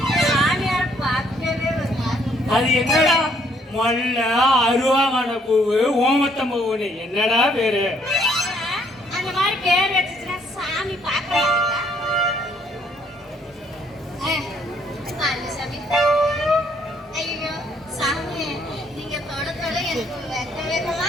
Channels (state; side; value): normal; both; correlation 0.66